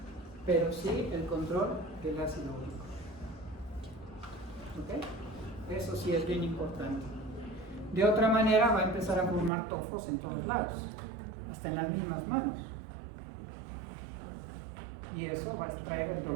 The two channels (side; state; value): left; drops out; at 9.5 s